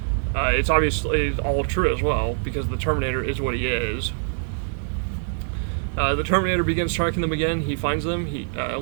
it's obviously all true as well, because the Terminator is what he is. The Terminator begins tracking them again. He finds them, he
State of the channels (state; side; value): silent; left; digital silence